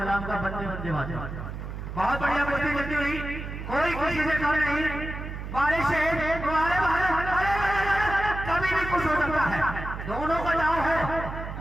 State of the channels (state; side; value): noise; right; hum, 8 dB below the sound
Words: का बंदे बंदे मातरम। बहुत बढ़िया कुर्ती चलती रही, कोई किसी से कम नहीं, वारे शेर वारे बहादुर, कभी भी कुछ हो सकता है, दोनों का दाव है,